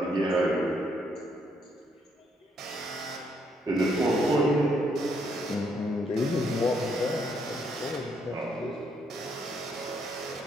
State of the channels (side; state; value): both; normal; correlation 0.72